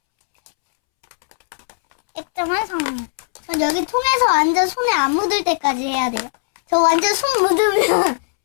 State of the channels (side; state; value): right; silent; 67 dB below the other